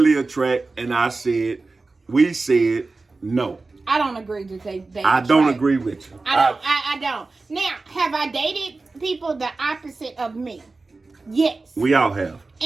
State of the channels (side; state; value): left; quieter; 3.6 dB